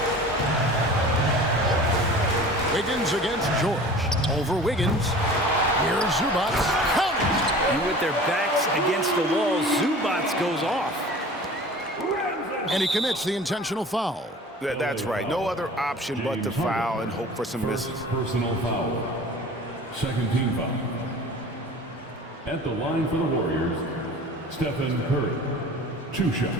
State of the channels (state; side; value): normal; both; correlation 0.42